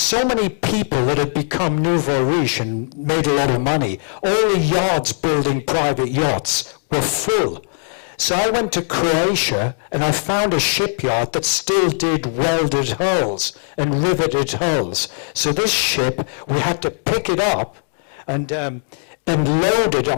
many people that had become nouveau riche and made a lot of money. All the yards building private yachts were full. So I went to Croatia, and I found a shipyard that still did welded hulls and riveted hulls. So this ship, we had to pick it up and load it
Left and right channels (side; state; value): right; silent; digital silence